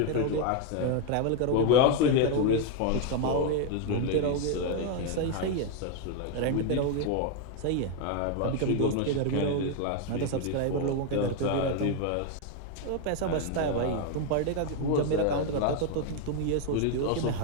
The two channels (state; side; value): different; both; correlation 0.01